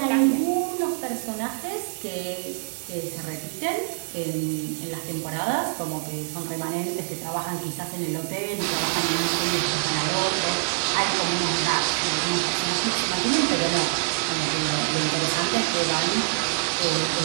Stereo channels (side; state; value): left; silent; digital silence